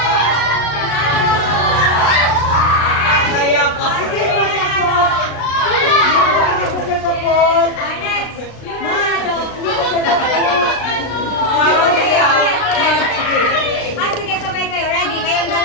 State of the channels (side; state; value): right; late; 36 ms